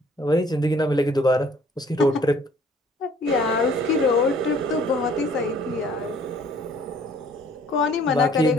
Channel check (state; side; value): normal; both; correlation 0.57